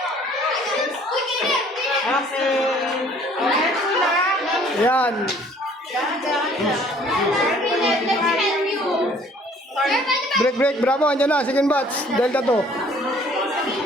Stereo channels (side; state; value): both; normal; correlation 0.56